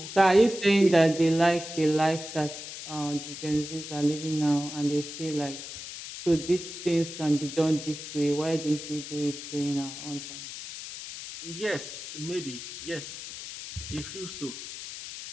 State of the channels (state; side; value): noise; left; hiss, 10 dB below the sound